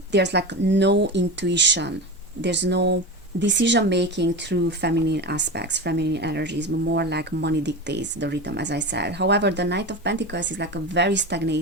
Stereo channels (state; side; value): normal; both; correlation 0.24